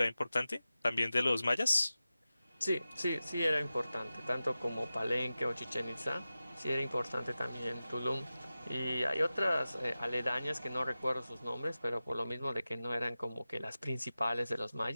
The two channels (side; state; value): both; inverted; correlation -0.95